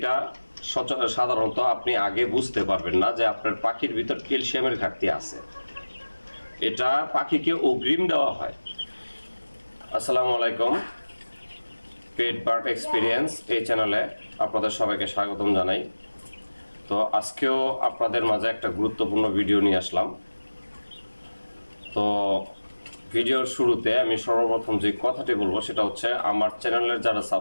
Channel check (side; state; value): both; inverted; correlation -1.00